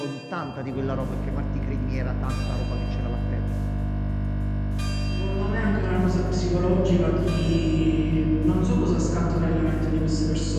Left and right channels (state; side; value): identical; both; correlation 1.00